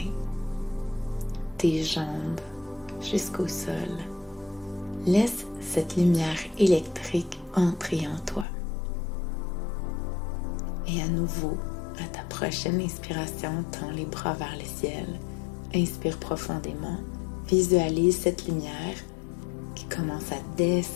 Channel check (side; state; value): right; drops out; at 8.5 s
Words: tes jambes jusqu'au sol. Laisse cette lumière électrique entrer en toi. Et à nouveau, à ta prochaine inspiration, tends les bras vers le ciel. Inspire profondément. Visualise cette lumière qui commence à